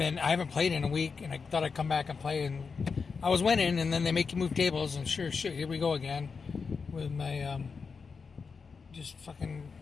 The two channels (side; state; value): right; quieter; 5.2 dB